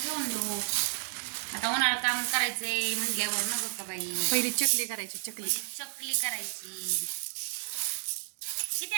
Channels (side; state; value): left; silent; digital silence